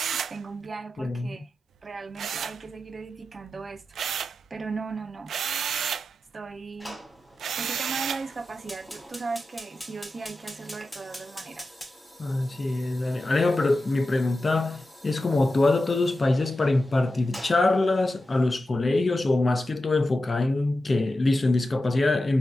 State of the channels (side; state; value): both; normal; correlation 0.92